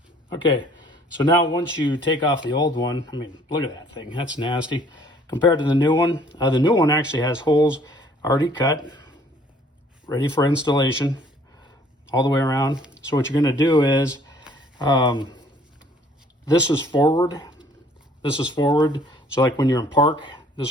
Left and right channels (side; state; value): both; normal; correlation 0.58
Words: Okay, so now once you take off the old one, I mean, look at that thing, that's nasty. Compared to the new one actually has holes already cut, ready for installation all the way around. So what you're gonna do is, this is forward. So like when you're in park,